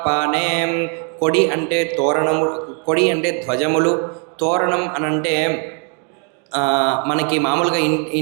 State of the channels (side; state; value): left; quieter; 39.0 dB